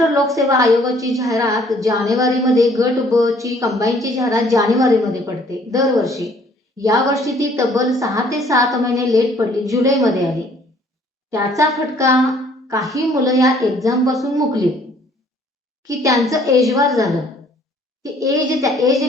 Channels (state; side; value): normal; both; correlation 0.59